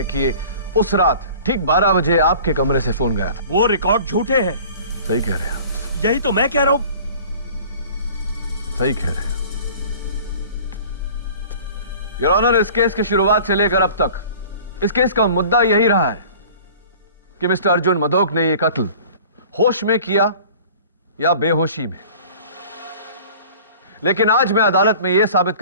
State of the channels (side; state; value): both; inverted; correlation -0.45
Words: कि उस रात ठीक 12 बजे आपके कमरे से फोन गया था। वो रिकॉर्ड झूठे हैं। सही कह रहे हैं। यही तो मैं कह रहा हूं। सही कह रहे हैं। योर ऑनर, इस केस की शुरुआत से लेकर अब तक इस केस का मुद्दा यही रहा है कि मिस्टर अर्जुन मधोक ने यह कत्ल होश में किया या बेहोशी में। लेकिन आज मैं अदालत में यह साबित